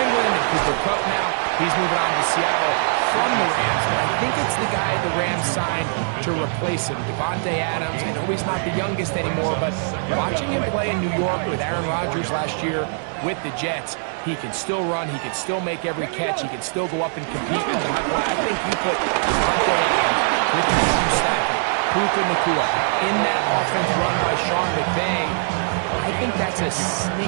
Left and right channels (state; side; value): silent; left; digital silence